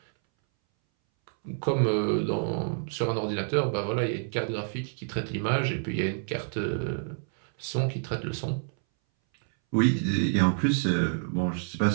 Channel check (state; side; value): silent; left; 59 dB below the other